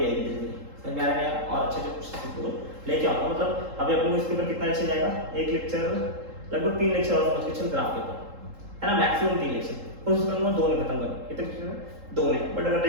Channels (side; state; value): left; late; 3.8 ms